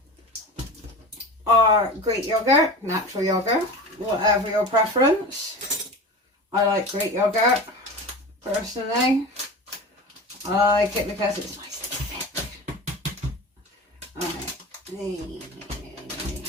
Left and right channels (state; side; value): normal; both; correlation 0.32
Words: our Greek yogurt, natural yogurt, whatever your preference. I like Greek yogurt, personally. I like it because it's nice and thick. Alright,